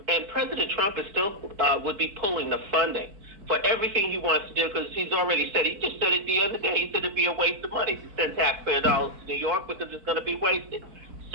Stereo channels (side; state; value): left; late; 4.5 ms